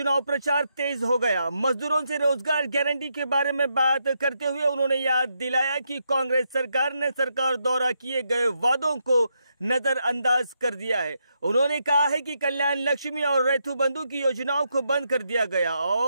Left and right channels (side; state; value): both; inverted; correlation -0.81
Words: प्रचार तेज हो गया। मजदूरों से रोजगार गारंटी के बारे में बात करते हुए उन्होंने याद दिलाया कि कांग्रेस सरकार ने सरकार द्वारा किए गए वादों को नजरअंदाज कर दिया है। उन्होंने कहा है कि कल्याण लक्ष्मी और रैथू बंधु की योजनाओं को बंद कर दिया गया